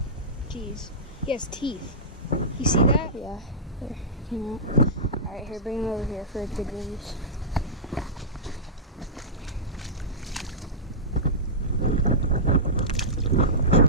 Jeez. He has teeth. You see that? Yeah. There. Came out. Alright, here, bring him over here for a good release.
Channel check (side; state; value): both; normal; correlation -0.17